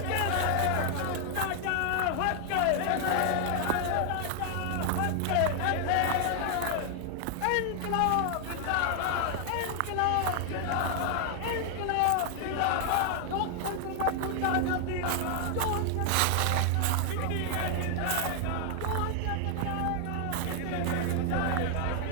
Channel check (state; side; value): different; both; correlation 0.00